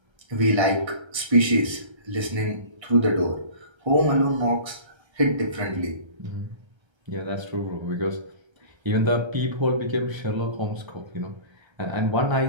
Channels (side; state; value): left; late; 1.3 ms